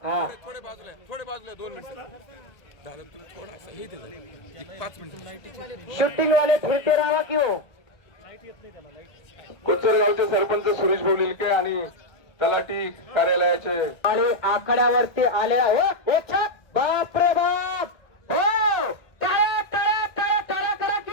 हा थोडे बाजूला 2 मिनिट झालं तुम्ही थोडासा हे दे 5 मिनिट शूटिंग वाले फिरते राहा की हो. कोचर गावचे सरपंच सुरेश बोलिलके आणि तलाठी कार्यालयाचे आणि आखाड्यावरती आलेला हो एक छाक. बाप रे बाप. हो टाळ्या टाळ्या टाळ्या टाळ्या करा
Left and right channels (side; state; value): right; late; 1.7 ms